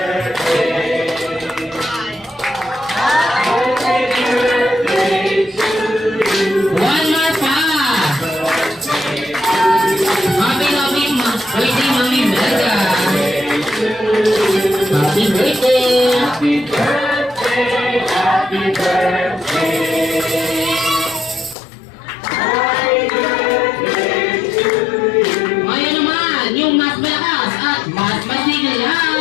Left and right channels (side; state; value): right; drops out; at 21.6 s